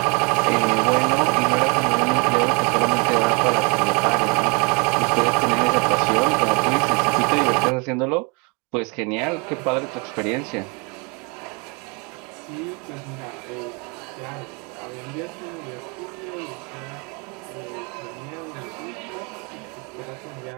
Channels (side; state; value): left; quieter; 31.7 dB